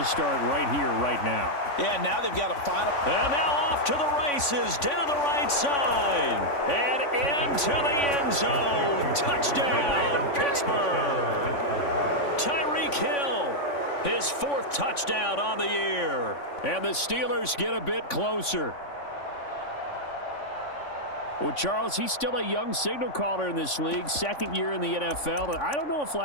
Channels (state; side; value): late; right; 3.5 ms